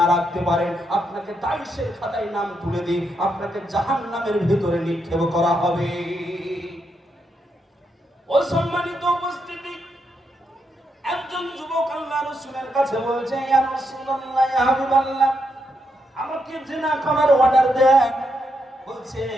রাখতে পারেন, আপনাকে দায়িশের খাতায় নাম তুলে দিই, আপনাকে জাহান্নামের ভিতরে নিক্ষেপ করা হবে। অসম্মানিত উপস্থিতি, একজন যুবক আল্লাহ রাসূলের কাছে বলছে, ইয়া রাসূলুল্লাহ, ইয়া হাবিবাল্লাহ, আমাকে জিনা করার অর্ডার দেন। বলছে,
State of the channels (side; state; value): both; normal; correlation 0.81